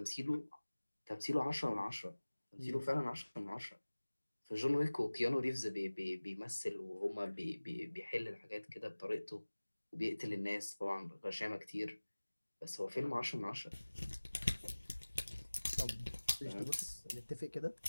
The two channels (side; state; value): both; inverted; correlation -1.00